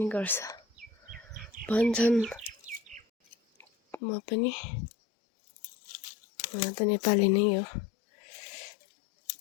गर्छ भन्छन् म पनि त नेपाली नै हो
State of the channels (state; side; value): drops out; right; at 4.0 s